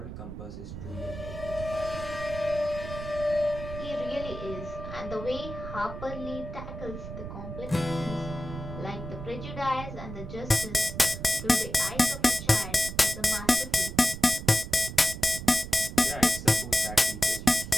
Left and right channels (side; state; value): right; noise; rumble, 9 dB below the sound